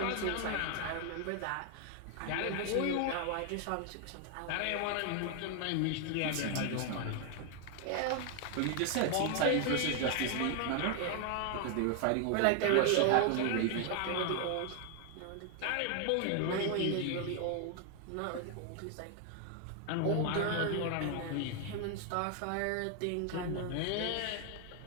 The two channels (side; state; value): both; different; correlation 0.00